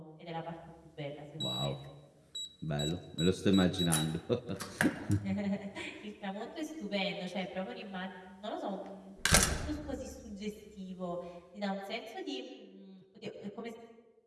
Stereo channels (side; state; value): both; identical; correlation 1.00